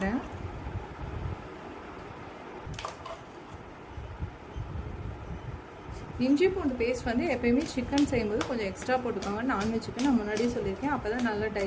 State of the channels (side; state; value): both; identical; correlation 1.00